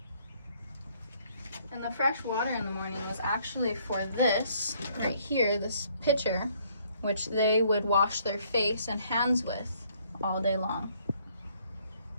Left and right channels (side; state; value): both; inverted; correlation -0.65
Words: And the fresh water in the morning was actually for this right here, this pitcher, which they would wash their face and hands with all day long.